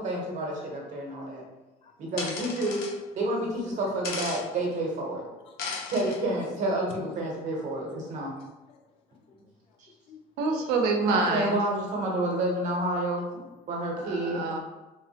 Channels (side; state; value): both; normal; correlation 0.30